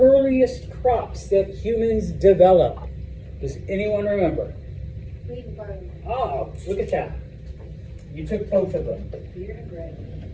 crops that humans developed. Does anyone remember? Wheat and barley. Oh, look at that. You took both of them. Beer and bread.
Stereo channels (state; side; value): identical; both; correlation 1.00